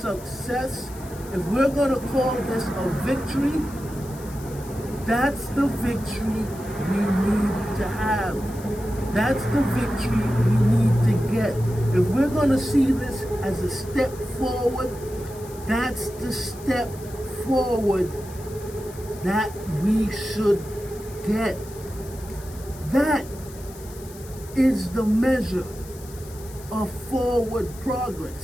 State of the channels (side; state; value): left; noise; hiss, 19 dB below the sound